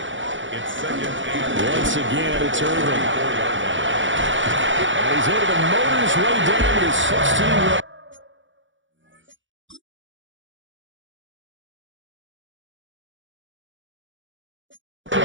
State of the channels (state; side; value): late; left; 0.56 ms